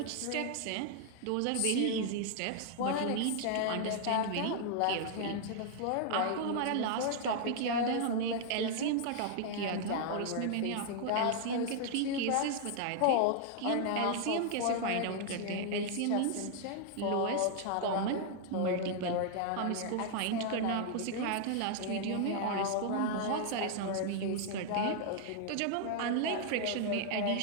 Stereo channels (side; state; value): both; different; correlation 0.00